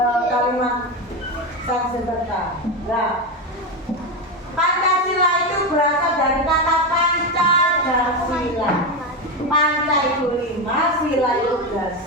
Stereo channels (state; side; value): normal; both; correlation 0.13